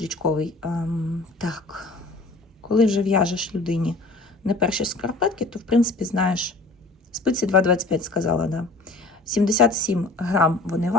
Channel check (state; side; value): quieter; right; 3.1 dB